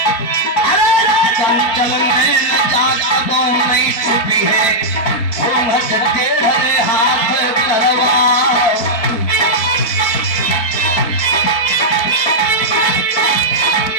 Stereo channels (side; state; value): right; late; 4.5 ms